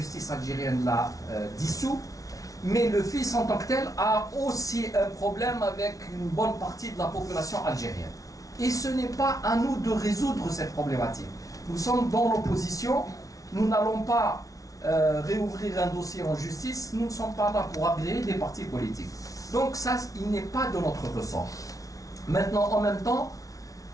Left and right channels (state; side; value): late; right; 0.17 ms